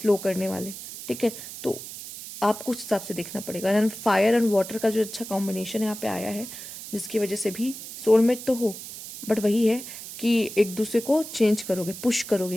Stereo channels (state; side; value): noise; right; hiss, 11 dB below the sound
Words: करने वाले, ठीक है। तो आपको उस हिसाब से देखना पड़ेगा। एंड फायर एंड वाटर का जो अच्छा कॉम्बिनेशन यहाँ पे आया है, जिसकी वजह से भी सोलमेट तो हो, बट वही है कि एक दूसरे को चेंज करोगे, पुश